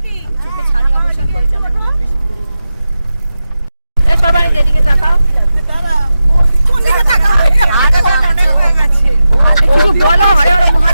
চোখে ছানি অবসান করেছে আমার মনে হয়, বেশি করি। এই সবাই যেদিকে তাকাও, কিছু বলো। হরে হরে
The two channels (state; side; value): inverted; both; correlation -0.91